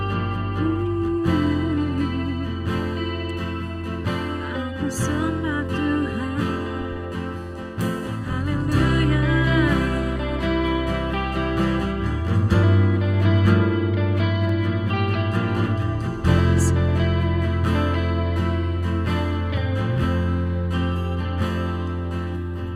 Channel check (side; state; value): both; identical; correlation 1.00